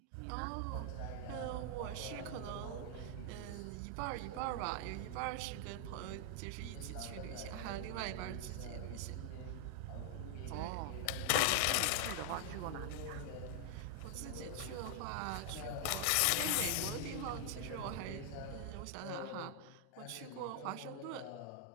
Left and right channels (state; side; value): different; both; correlation 0.00